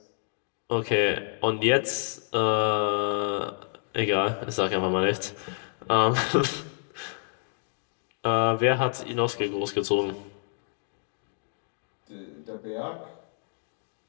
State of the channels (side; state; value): right; silent; 58 dB below the other